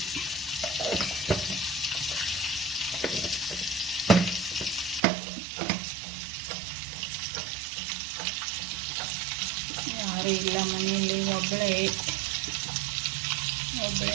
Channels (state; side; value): drops out; left; at 5.0 s